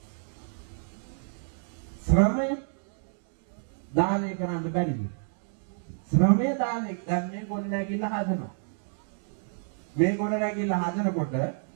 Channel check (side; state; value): left; silent; digital silence